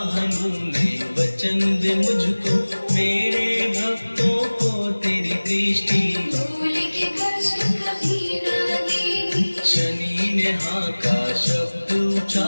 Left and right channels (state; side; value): inverted; both; correlation -1.00